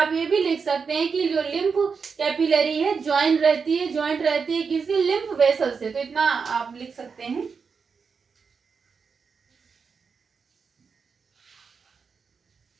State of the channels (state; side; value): quieter; left; 5.6 dB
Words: ये भी लिख सकते हैं कि जो लिम्फ कैपिलरी है ज्वाइंट रहती है किसी लिम्फ वेसल से। तो इतना आप लिख सकते हैं।